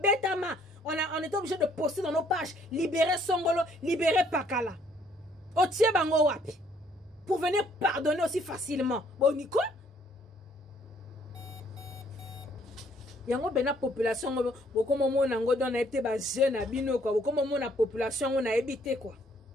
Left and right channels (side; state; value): both; normal; correlation 0.64